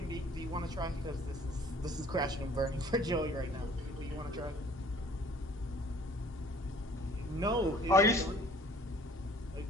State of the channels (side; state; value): both; normal; correlation 0.54